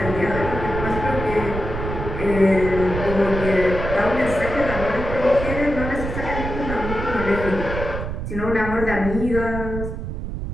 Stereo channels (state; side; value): noise; right; rumble, 6 dB below the sound